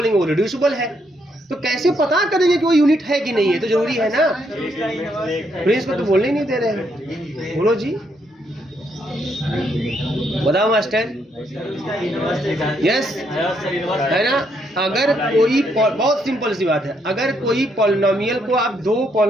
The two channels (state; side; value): normal; both; correlation 0.74